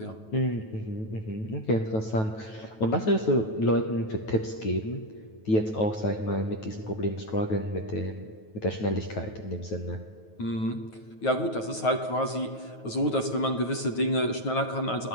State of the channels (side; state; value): right; late; 9.2 ms